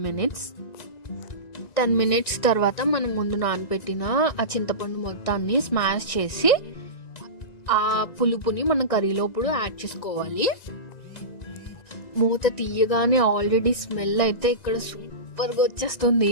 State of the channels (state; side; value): late; right; 1.9 ms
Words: మినిట్స్ తర్వాత మనం ముందు నానబెట్టిన ఆ చింతపండు మొత్తాన్ని స్మాష్ చేసి ఆ పులుపుని మనం కర్రీలోప్పుడు యాడ్ చేసుకోవాలి. మూత తీయగానే ఆల్రెడీ స్మెల్ అయితే ఇక్కడ సూపర్గా